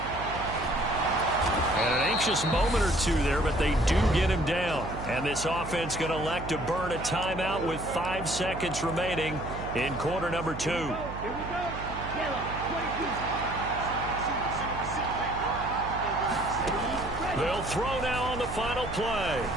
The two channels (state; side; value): noise; right; hum, 9 dB below the sound